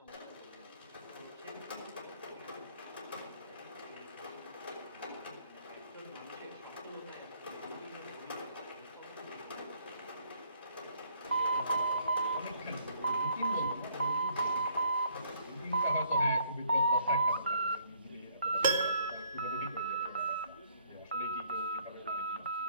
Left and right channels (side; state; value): both; inverted; correlation -0.64